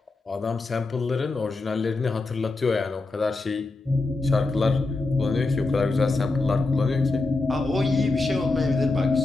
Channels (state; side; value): quieter; right; 3.4 dB